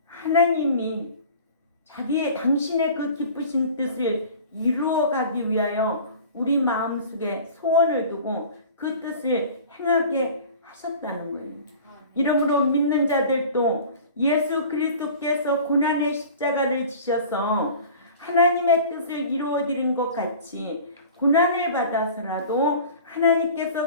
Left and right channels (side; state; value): both; inverted; correlation -0.41